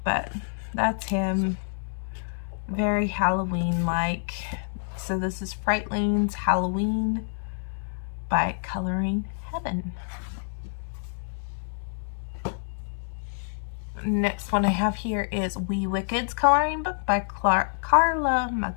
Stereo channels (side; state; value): right; silent; 60 dB below the other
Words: but that's him. Very Halloween-like. So this is Frightlings Halloween by Coloring Heaven. Next one I have here is Wee Wicked's coloring book by Carla